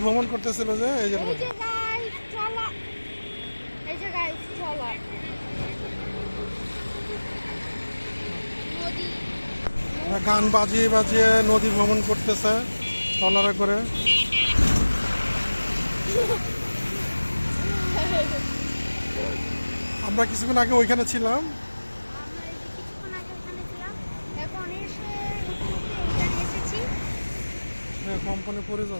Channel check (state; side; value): inverted; both; correlation -1.00